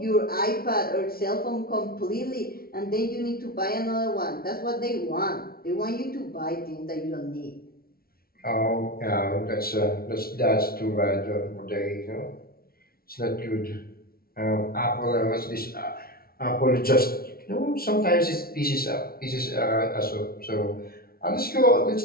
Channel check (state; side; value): late; right; 0.44 ms